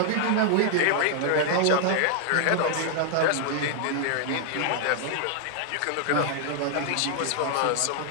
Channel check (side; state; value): both; different; correlation 0.00